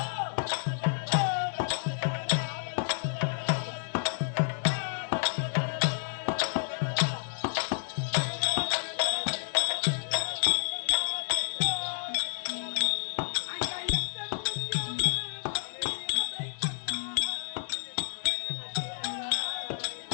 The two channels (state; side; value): silent; right; 58 dB below the other